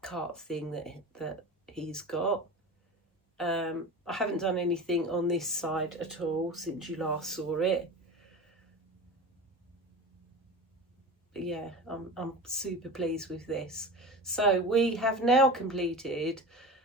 cart thing that he's got. I haven't done anything on this side at all since you last saw it. But yeah, I'm super pleased with this. So we have now completed,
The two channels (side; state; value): both; normal; correlation 0.32